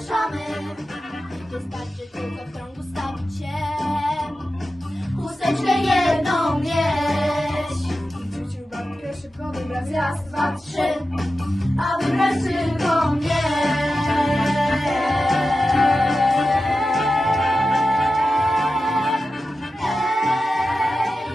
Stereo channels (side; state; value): both; normal; correlation 0.92